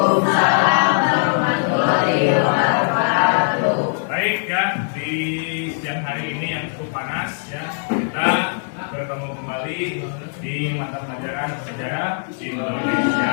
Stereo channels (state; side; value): silent; right; 62 dB below the other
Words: warahmatullahi wabarakatuh. Baik ya, di siang hari ini yang cukup panas ya, kita bertemu kembali di mata pelajaran sejarah